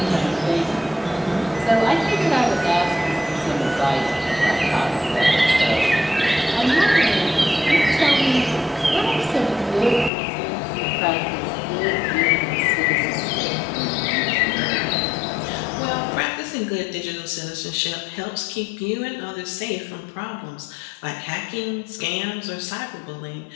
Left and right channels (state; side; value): drops out; right; at 10.1 s